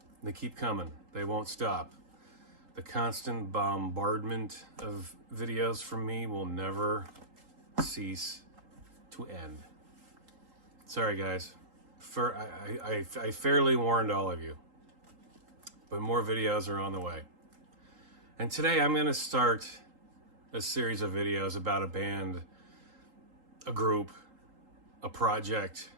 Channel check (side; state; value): left; late; 3.8 ms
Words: They keep coming. They won't stop. The constant bombardment of videos from me will never cease to end. Sorry, guys. I fairly warned all of you, but more videos are on the way. And today I'm going to start a series of videos about a band, a group, a project,